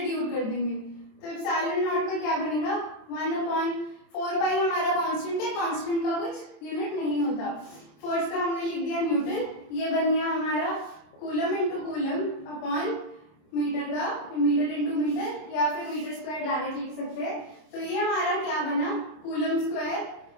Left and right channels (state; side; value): late; right; 27 ms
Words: कर देंगे। तो एप्सिलॉन नॉट का क्या बनेगा, 1/4π हमारा कांस्टेंट है, कांस्टेंट का कुछ यूनिट नहीं होता। फोर्स का हमने लिख दिया न्यूटन, ये बन गया हमारा coulomb into coulomb upon metre का मीटर इंटू मीटर, या फिर मीटर स्क्वायर डायरेक्ट लिख सकते हैं। तो ये हमारा क्या बना, कूलम स्क्वायर